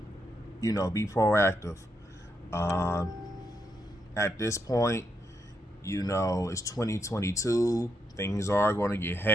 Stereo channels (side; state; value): both; normal; correlation 0.80